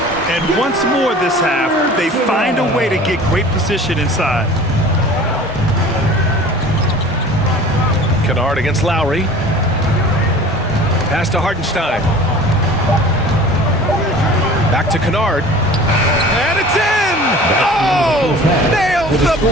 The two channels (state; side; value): normal; both; correlation 0.43